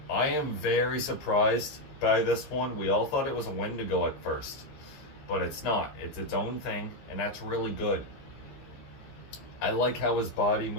I am very surprised by this one. We all thought it was a Wendigo at first, but it's not. It's its own thing, and that's really good. I like how his body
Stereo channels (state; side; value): late; right; 15 ms